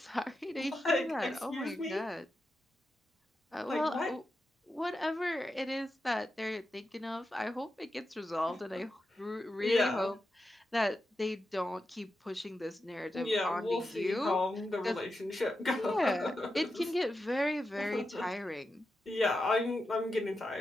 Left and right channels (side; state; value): both; normal; correlation 0.88